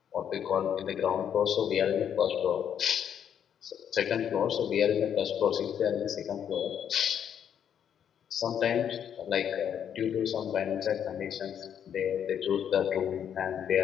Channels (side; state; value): right; quieter; 8.8 dB